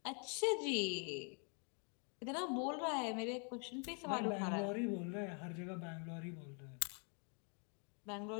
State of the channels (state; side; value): quieter; right; 39.5 dB